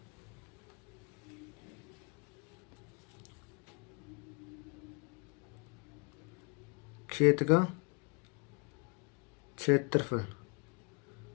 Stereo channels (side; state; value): right; quieter; 33.7 dB